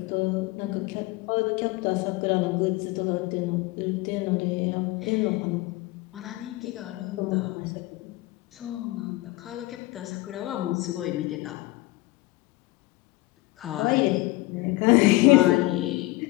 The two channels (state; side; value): quieter; right; 20.4 dB